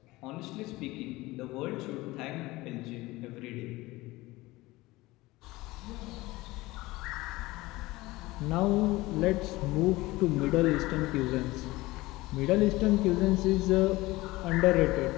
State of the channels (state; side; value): quieter; right; 19.9 dB